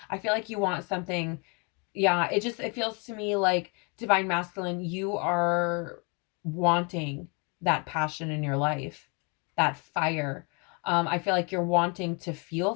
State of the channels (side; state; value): right; quieter; 33.1 dB